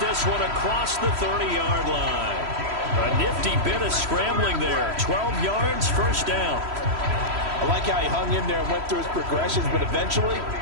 this one across the 30-yard line. A nifty bit of scrambling there. 12 yards, first down. I like how he hung in there and went through his progressions, but eventually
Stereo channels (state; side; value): late; left; 3.1 ms